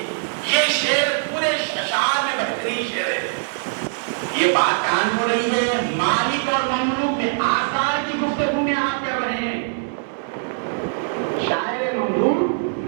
یہ شعر پورے اشعار میں بہترین شعر ہے. یہ بات کہاں ہو رہی ہے, مالک اور مملوک کے آثار کی گفتگو میں آپ کر رہے ہیں. شاعر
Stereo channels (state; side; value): silent; left; digital silence